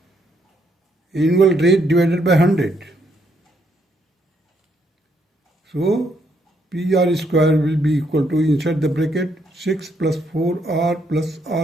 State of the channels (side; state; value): both; normal; correlation 0.73